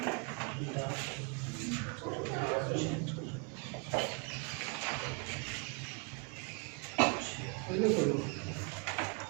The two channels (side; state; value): left; quieter; 34.4 dB